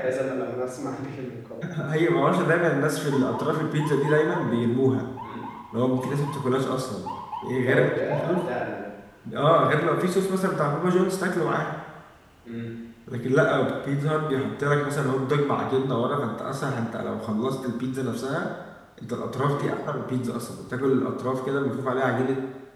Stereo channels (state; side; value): identical; both; correlation 1.00